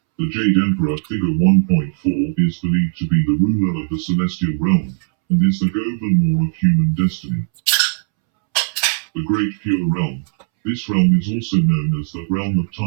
The Jade Emperor. Figure 1.4 is believed to be the ruler of the celestial realm, and is the Governor of human destiny. The Great Pure Realm. This realm is also known as the realm of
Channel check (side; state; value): left; silent; 67 dB below the other